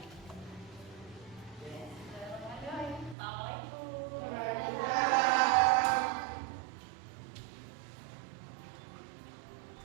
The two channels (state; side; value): drops out; left; at 3.2 s